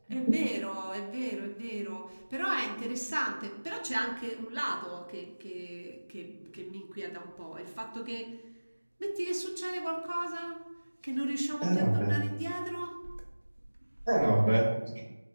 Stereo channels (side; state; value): both; inverted; correlation -1.00